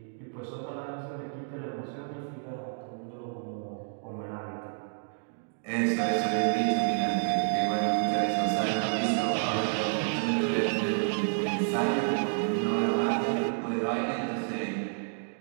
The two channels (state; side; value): silent; left; digital silence